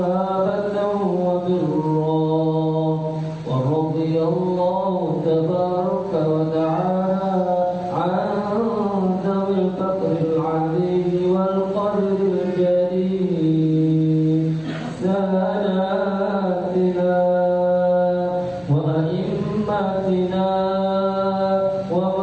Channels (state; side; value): noise; right; hum, 28 dB below the sound